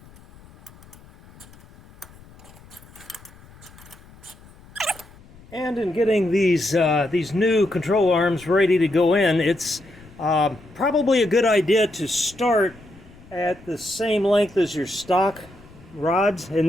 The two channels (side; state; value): left; noise; rumble, 23 dB below the sound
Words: And in getting these new control arms ready to go in, it's probably a good idea to start at the same length as your stock rods. In